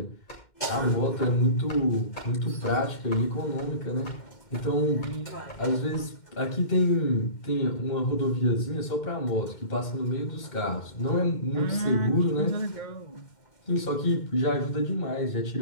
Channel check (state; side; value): late; right; 2.1 ms